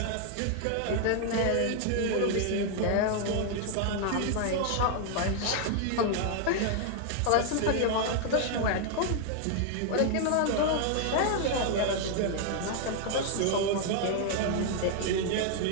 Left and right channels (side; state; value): both; different; correlation 0.00